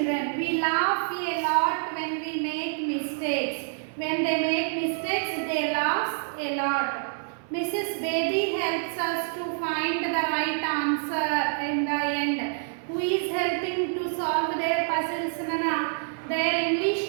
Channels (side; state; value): left; silent; 60 dB below the other